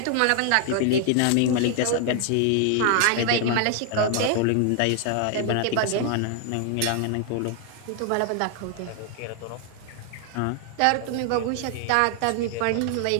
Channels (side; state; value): both; different; correlation 0.00